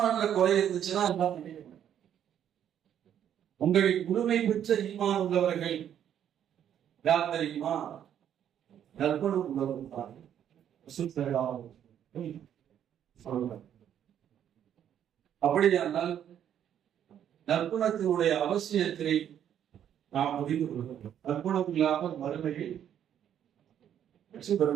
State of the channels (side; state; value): left; quieter; 9.8 dB